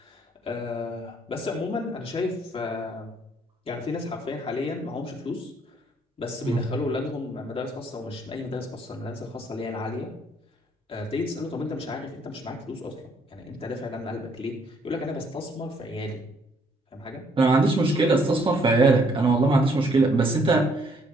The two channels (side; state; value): both; normal; correlation 0.67